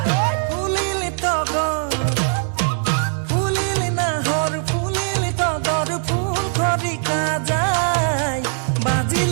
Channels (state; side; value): silent; left; digital silence